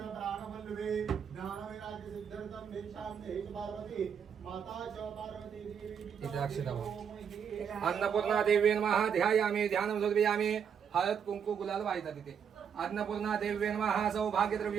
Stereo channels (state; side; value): quieter; left; 7.5 dB